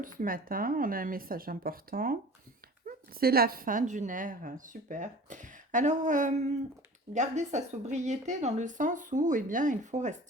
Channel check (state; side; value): normal; both; correlation 0.42